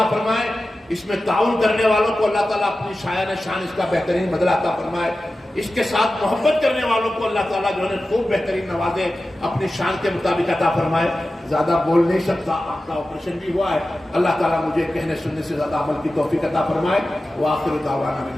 فرمائے۔ اس میں تعاون کرنے والوں کو اللہ تعالیٰ اپنی شایان شان اس کا بہترین بدلہ عطا فرمائے۔ اس کے ساتھ محبت کرنے والوں کو اللہ تعالیٰ جو ہے خوب بہترین نوازے، اپنی شان کے مطابق عطا فرمائے۔ زیادہ بول نہیں سکتا، آپ کا آپریشن بھی ہوا ہے، اللہ تعالیٰ مجھے کہنے سننے سے زیادہ عمل کی توفیق عطا فرمائے۔ وآخر دعوانا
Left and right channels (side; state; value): both; normal; correlation 0.94